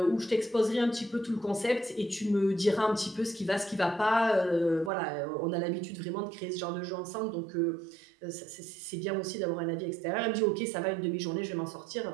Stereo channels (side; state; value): left; drops out; at 4.9 s